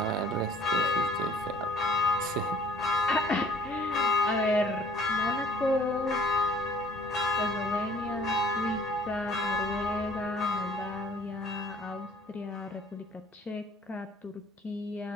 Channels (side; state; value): both; normal; correlation 0.57